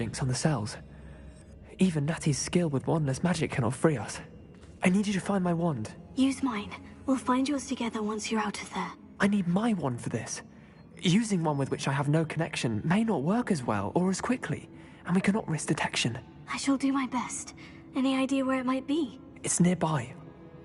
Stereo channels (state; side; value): identical; both; correlation 1.00